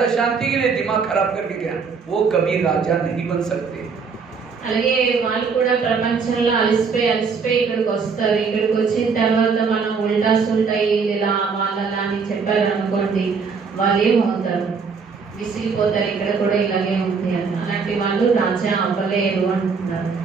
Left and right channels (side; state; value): left; quieter; 5.4 dB